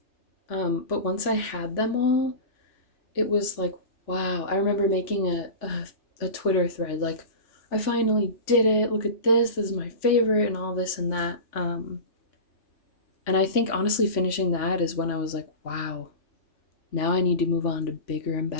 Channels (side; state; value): right; late; 3.5 ms